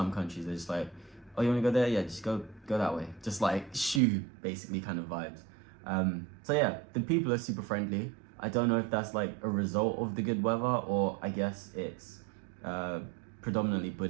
countries, they're just like, oh, you want to go there? Yeah, just go that way. Just like shoo, basically kind of vibes. So yeah, the people are super friendly. I don't know if that's like a result of the good weather, or I guess it's predominantly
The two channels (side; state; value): left; drops out; at 4.0 s